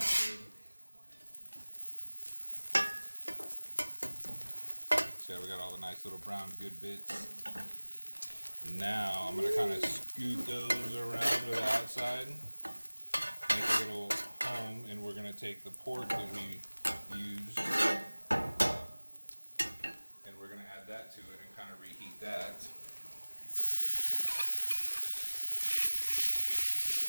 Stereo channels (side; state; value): both; inverted; correlation -1.00